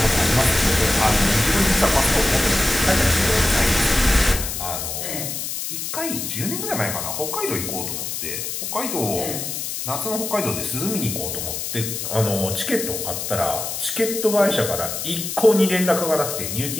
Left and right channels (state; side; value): noise; left; hiss, 4 dB below the sound